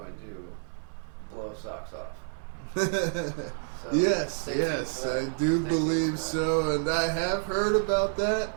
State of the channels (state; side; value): silent; left; digital silence